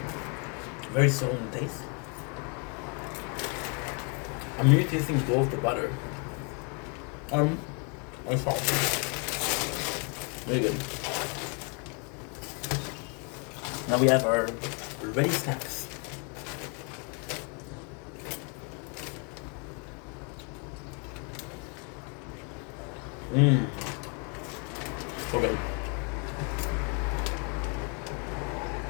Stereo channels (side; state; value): right; quieter; 36.6 dB